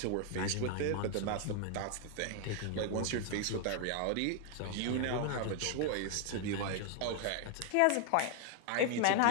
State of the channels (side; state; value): both; different; correlation 0.01